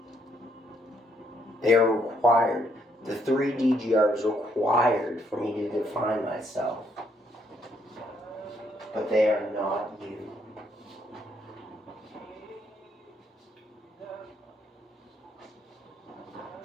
They are required. The 3 DGR is required for me to define myself. But they are not you.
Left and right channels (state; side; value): normal; both; correlation 0.72